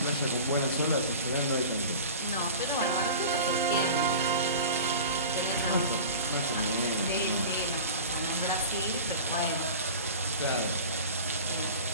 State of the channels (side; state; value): both; inverted; correlation -0.37